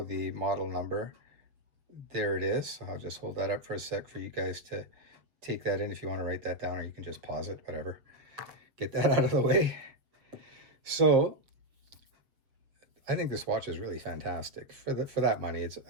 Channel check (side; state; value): left; late; 6.9 ms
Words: the model number, there it is. So I'll just hold that up for a sec for you guys to take that in if you want to write that down, or you can just pause it, whatever. Get that out of the way. So I think this watch is really fantastic. For that money,